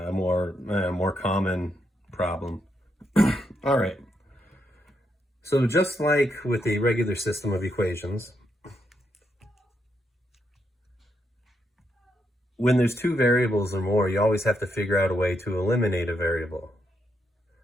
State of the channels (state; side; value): normal; both; correlation 0.80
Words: common problem. All right. So just like with a regular system of equations, when there's 2 variables or more, you always have to figure out a way to eliminate a variable.